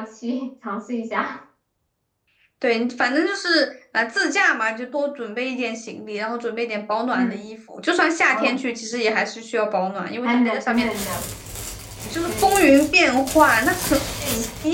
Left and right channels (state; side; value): identical; both; correlation 1.00